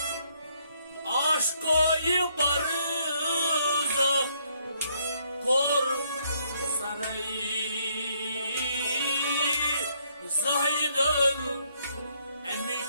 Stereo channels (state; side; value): inverted; both; correlation -0.70